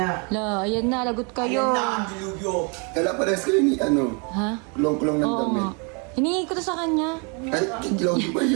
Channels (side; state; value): left; quieter; 34.8 dB